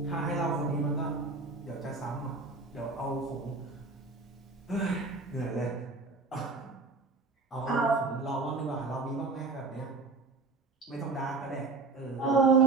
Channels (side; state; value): left; quieter; 3.8 dB